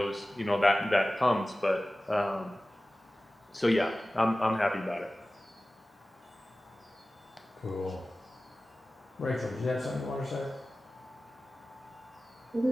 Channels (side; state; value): both; normal; correlation 0.96